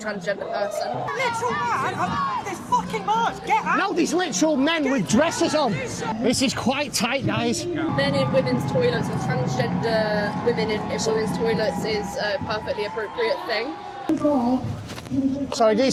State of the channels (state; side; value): identical; both; correlation 1.00